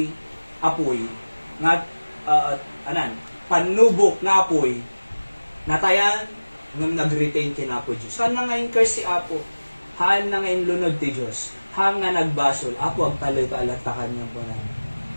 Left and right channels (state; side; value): inverted; both; correlation -1.00